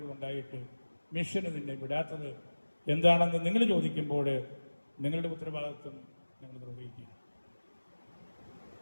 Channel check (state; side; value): inverted; both; correlation -1.00